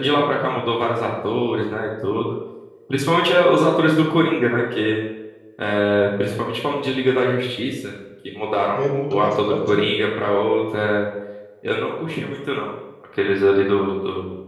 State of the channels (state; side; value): identical; both; correlation 1.00